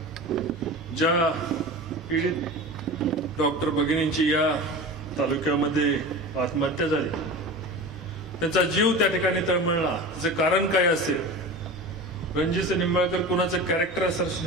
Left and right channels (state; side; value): normal; both; correlation 0.31